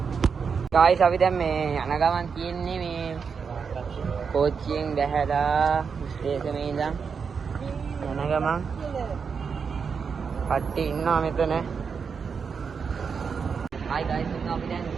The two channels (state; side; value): quieter; left; 5.9 dB